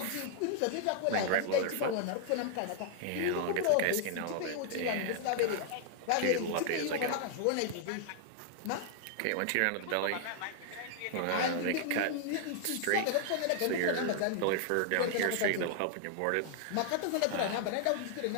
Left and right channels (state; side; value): different; both; correlation 0.00